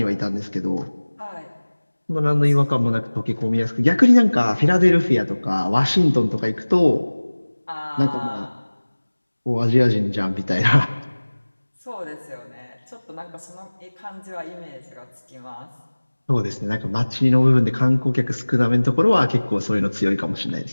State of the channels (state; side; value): inverted; both; correlation -1.00